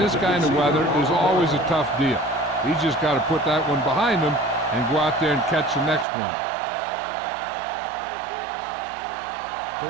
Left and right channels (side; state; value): left; drops out; at 6.1 s